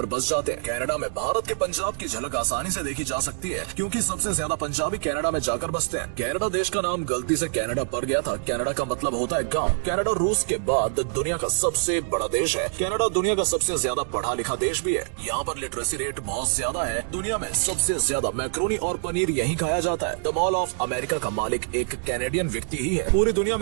बस जाते हैं। कनाडा में भारत के पंजाब की झलक आसानी से देखी जा सकती है क्योंकि सबसे ज्यादा पंजाबी कनाडा में जाकर बसते हैं। कनाडा देश का नाम गलती से कनाडा पड़ गया था। कनाडा का मतलब होता है गांव। कनाडा रूस के बाद दुनिया का सबसे बड़ा देश है। कनाडा दुनिया का सबसे ज्यादा पढ़ा लिखा देश भी है। यहाँ पर लिटरेसी रेट बहुत ज्यादा है। दुनिया में सबसे ज्यादा मैक्रोनी और पनीर यही खाया जाता है। द मॉल ऑफ अमेरिका का मालिक एक कैनेडियन व्यक्ति ही है। पूरी दुनिया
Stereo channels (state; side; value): silent; left; digital silence